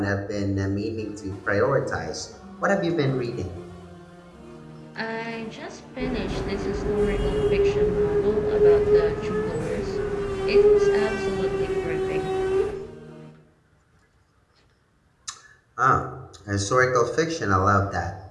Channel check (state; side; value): identical; both; correlation 1.00